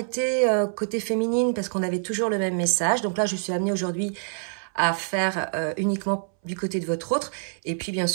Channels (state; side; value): silent; left; 61 dB below the other